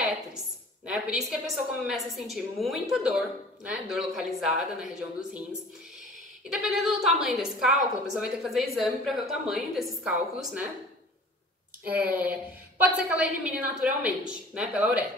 né? Por isso que a pessoa começa a sentir muita dor, né? Dor localizada na região dos rins. E dependendo do tamanho desse cálculo, a pessoa vai ter que fazer exame para ver o tamanho desses cálculos, né? Pode ser que ela elimine naturalmente, né? Pela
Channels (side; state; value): both; normal; correlation 0.46